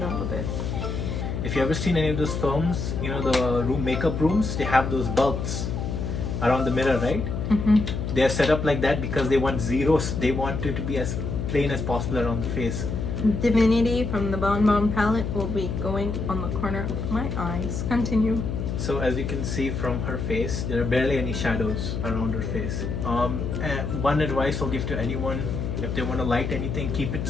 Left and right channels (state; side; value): noise; left; hum, 3 dB below the sound